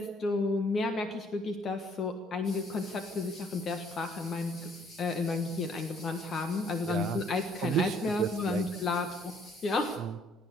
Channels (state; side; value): normal; both; correlation 0.63